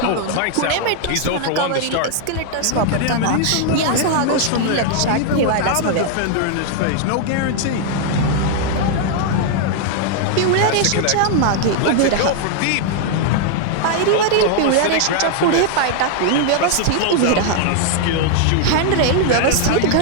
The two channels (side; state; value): both; different; correlation 0.00